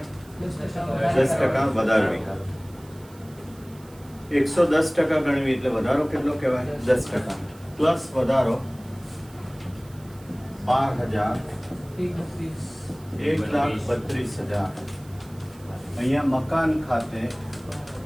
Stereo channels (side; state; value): right; noise; hiss, 25 dB below the sound